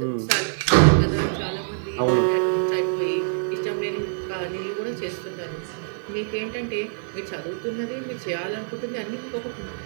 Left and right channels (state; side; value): silent; left; digital silence